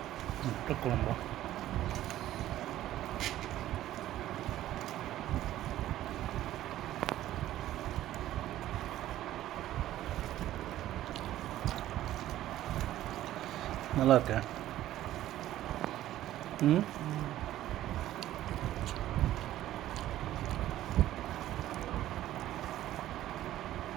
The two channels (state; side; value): quieter; left; 13.7 dB